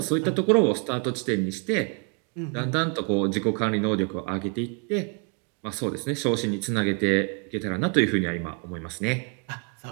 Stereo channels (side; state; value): left; quieter; 36.7 dB